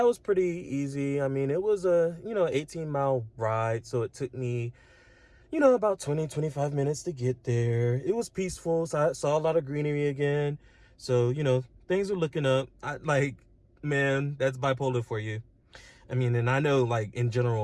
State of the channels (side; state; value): both; identical; correlation 1.00